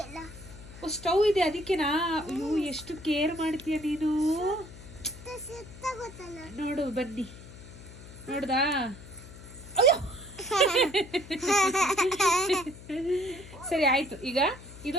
ಸ್ಟವ್ ಇದೆ ಅದಕ್ಕೆನಾ? ಅಯ್ಯೋ ಎಷ್ಟು ಕೇರ್ ಮಾಡ್ತೀಯ ನೀನು. ನೋಡು ಬನ್ನಿ, ನೋಡ್ದಾ? ಅಯ್ಯೋ ಸರಿ ಆಯ್ತು. ಈಗ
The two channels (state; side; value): noise; left; hum, 17 dB below the sound